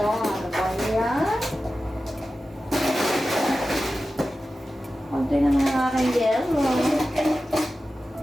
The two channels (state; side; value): normal; both; correlation 0.94